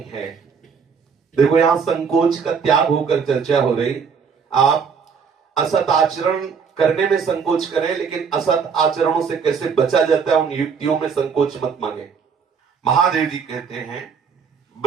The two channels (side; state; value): left; quieter; 6.1 dB